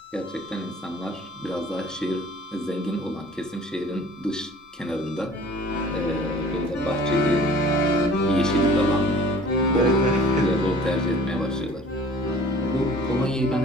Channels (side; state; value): both; normal; correlation 0.49